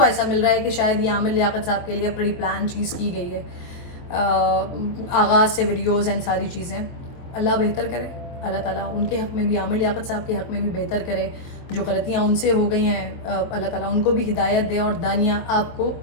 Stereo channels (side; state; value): right; late; 23 ms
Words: ایسا مل رہا ہے کہ شاید یہ عامر لیاقت صاحب کے لیے پری پلان چیز کی گئی ہے, آغاز سے ویڈیوز اینڈ ساری چیزیں. اللہ بہتر کرے, اللہ تعالیٰ ان کے حق میں بھی, عامر لیاقت صاحب کے حق میں بھی بہتر کرے. جو غلطیاں ان سے ہو گئی ہیں, اللہ تعالیٰ ان کو بھی ہدایت دے. اور دانیہ آپ کو